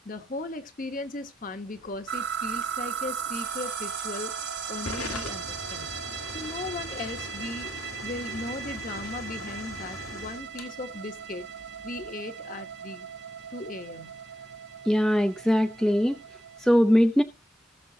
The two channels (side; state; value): both; normal; correlation 0.79